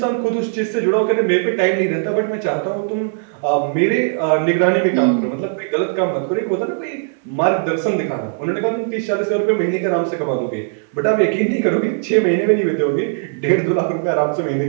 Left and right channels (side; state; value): left; silent; digital silence